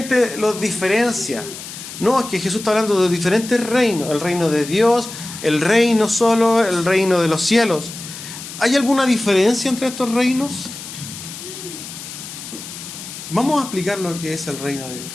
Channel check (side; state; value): left; noise; hiss, 12 dB below the sound